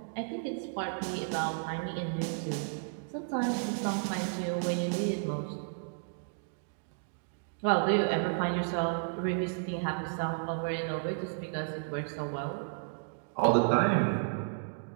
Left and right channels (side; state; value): left; silent; digital silence